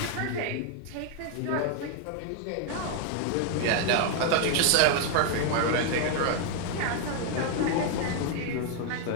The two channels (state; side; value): different; both; correlation 0.00